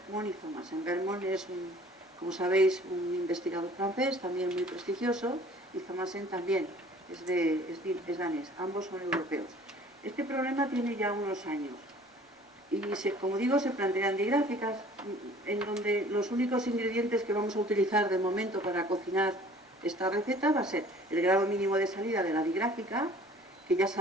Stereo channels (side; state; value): both; normal; correlation 0.51